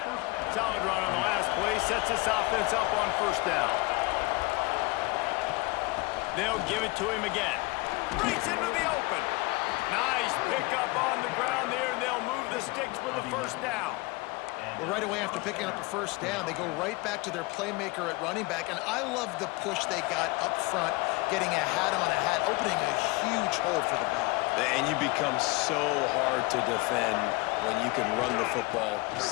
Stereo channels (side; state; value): right; quieter; 24.2 dB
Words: Solid run on the last play, sets this offense up on first down. They'll give it to him again. Breaks into the open. Nice pickup on the ground there, and they'll move the sticks with the first down. Well, right away after picking up a first down, they go right back to their playmaker at running back, and I love the push they got up front, getting a hat on a hat, opening a huge hole for the ball. And you become so hard to defend when you can run the football